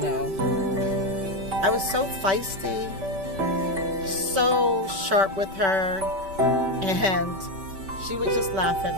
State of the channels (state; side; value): late; left; 5.2 ms